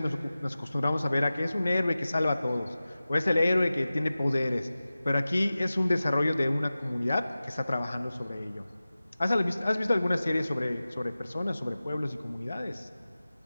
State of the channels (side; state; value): both; inverted; correlation -0.96